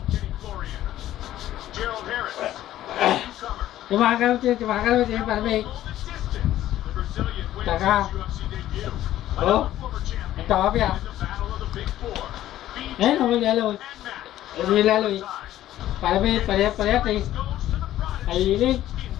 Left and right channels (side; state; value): right; quieter; 13.4 dB